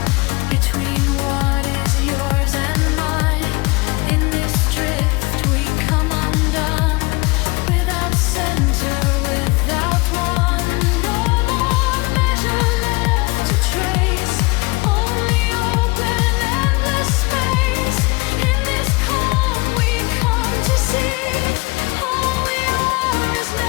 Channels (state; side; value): quieter; right; 25.5 dB